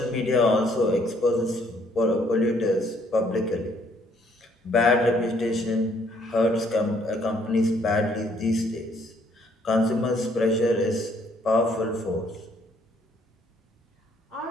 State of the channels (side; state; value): both; normal; correlation 0.66